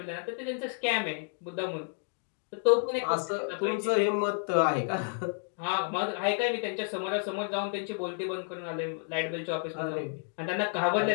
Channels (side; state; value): right; silent; 57 dB below the other